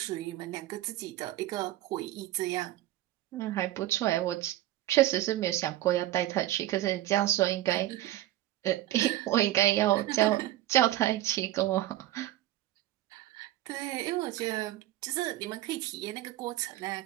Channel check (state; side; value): quieter; left; 14.9 dB